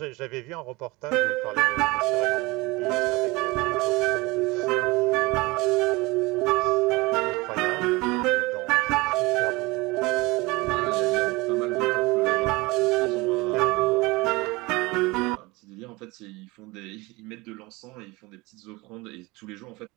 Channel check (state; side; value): quieter; left; 23.4 dB